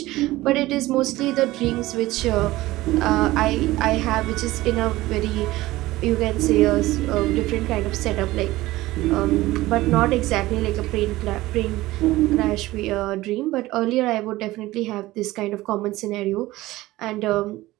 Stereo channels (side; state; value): left; quieter; 17.8 dB